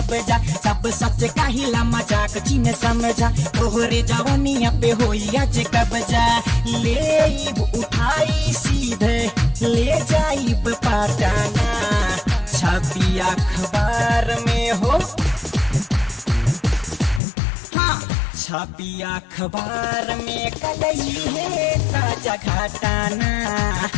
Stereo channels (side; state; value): right; drops out; at 17.2 s